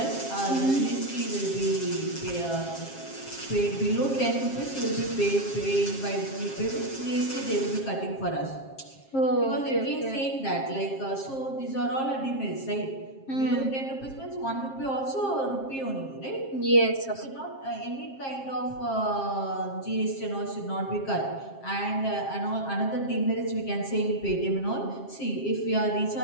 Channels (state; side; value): late; right; 7.5 ms